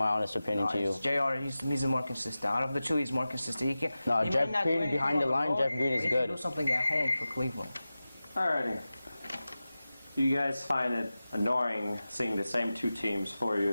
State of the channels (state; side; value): inverted; both; correlation -0.95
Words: honest opinion to you. J.R., he's more consistent. Out of the 2, he's more consistent. Jeff Green behind the line, Jeff Green is good. He can do something at home for Cleveland. Alrighty. Do you guys find it annoying seeing the same 2 teams 4